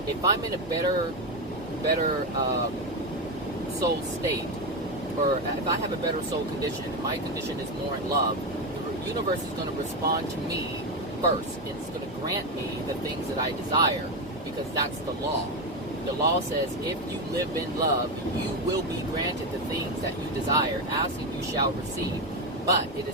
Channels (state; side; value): normal; both; correlation 0.12